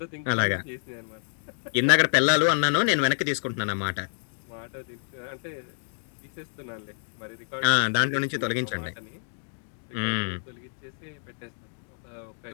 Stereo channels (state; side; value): silent; right; 59 dB below the other